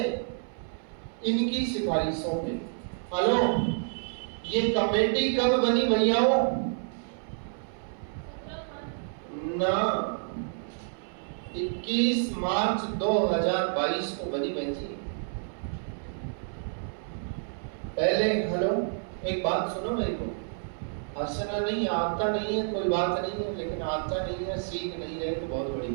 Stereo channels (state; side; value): silent; left; 58 dB below the other